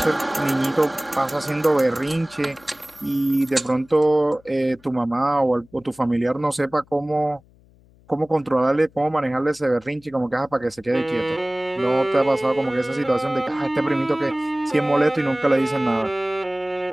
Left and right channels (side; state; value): left; noise; hum, 29 dB below the sound